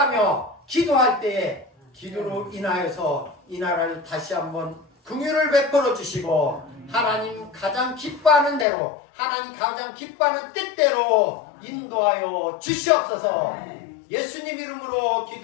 기도할 때에 기도로 인하여서 이 나라를 다시 한번 긍휼을 베풀어 주시고 하나님 가장 기뻐하는 대로, 하나님 가장 기뻐하는 뜻대로 인도하여 주시옵소서. 예수님 이름으로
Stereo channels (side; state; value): right; drops out; at 8.7 s